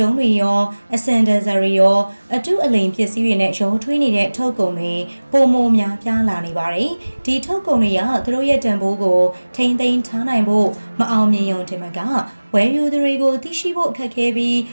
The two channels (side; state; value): both; inverted; correlation -1.00